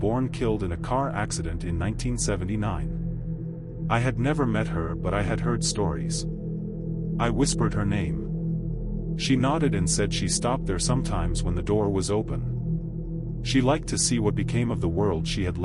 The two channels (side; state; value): both; identical; correlation 1.00